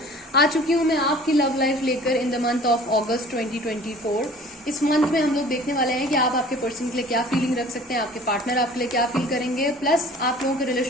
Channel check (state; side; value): normal; both; correlation 0.47